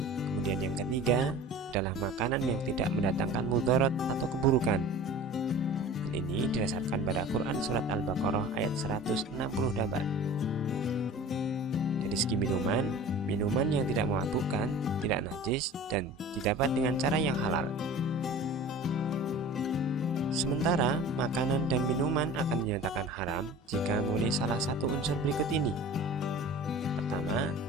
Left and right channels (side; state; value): both; normal; correlation 0.40